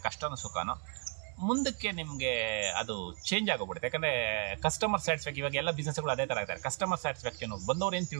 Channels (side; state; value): left; quieter; 35.1 dB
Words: ಕಷ್ಟನೋ ಸುಖನೋ ಮುಂದಕ್ಕೆ ನಿಮಗೆ ಅದು ಚೇಂಜ್ ಆಗೋಗ್ಬಿಡುತ್ತೆ. ಯಾಕಂದರೆ ಕಸ್ಟಮರ್ ಸ್ಯಾಟಿಸ್ಫ್ಯಾಕ್ಷನ್, ಇವಾಗ ಎಲ್ಲ ಬಿಸ್ನೆಸ್ಗಳು ಅದೇ ಥರ ಇರ್ತಾರೆ. ಕಸ್ಟಮರ್ ಸ್ಯಾಟಿಸ್ಫ್ಯಾಕ್ಷನ್ ಬಂದವ್ರು ಏನು